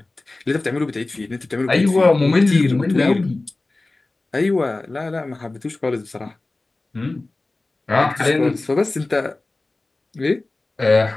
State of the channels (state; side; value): quieter; right; 3.1 dB